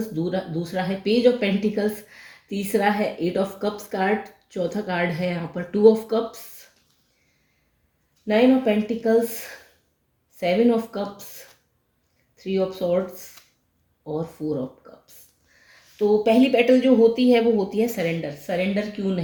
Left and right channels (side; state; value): both; identical; correlation 1.00